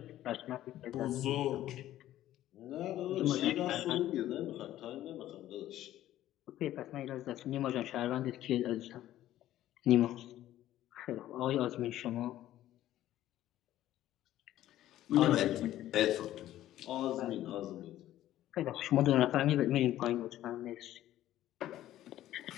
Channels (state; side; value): quieter; right; 13.5 dB